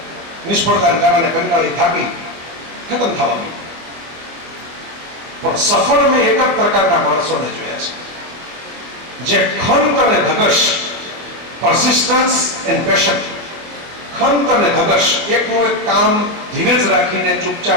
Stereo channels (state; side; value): late; left; 25 ms